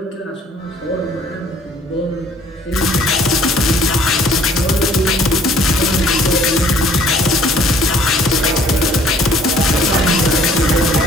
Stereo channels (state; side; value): normal; both; correlation 0.57